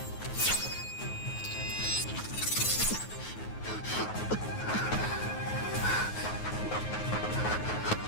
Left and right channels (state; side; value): late; right; 9.4 ms